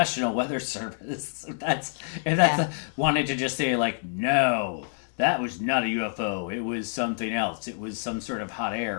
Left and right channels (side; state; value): right; silent; digital silence